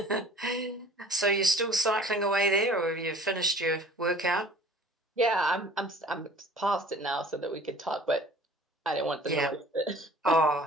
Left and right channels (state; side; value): normal; both; correlation 0.48